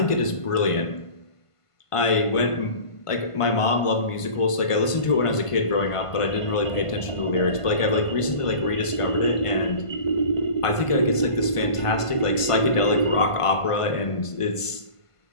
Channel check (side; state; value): right; late; 1.5 ms